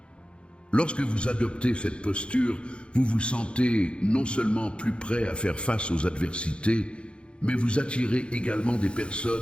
Lorsque vous adoptez cette posture, vous vous sentez non seulement plus prêt à faire face aux adversités, mais vous attirez également des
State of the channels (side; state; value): right; late; 0.057 ms